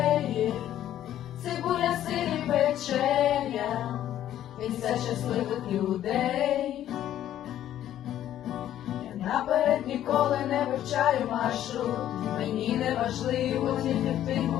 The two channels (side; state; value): right; quieter; 11.8 dB